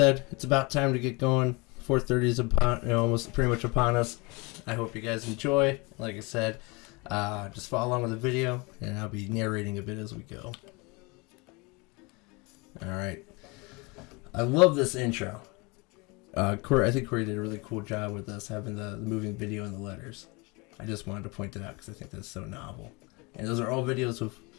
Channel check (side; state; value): right; quieter; 27.4 dB